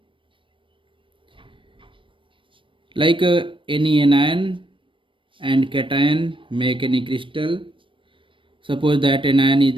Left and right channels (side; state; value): left; late; 0.25 ms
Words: like any anion and cation make any crystal. Suppose that anion is